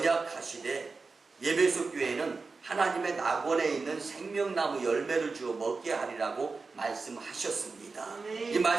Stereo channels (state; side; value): quieter; left; 4.2 dB